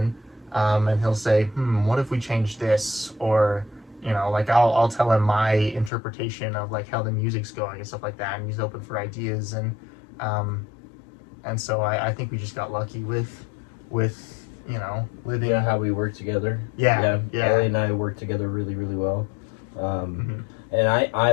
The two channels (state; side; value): drops out; right; at 5.9 s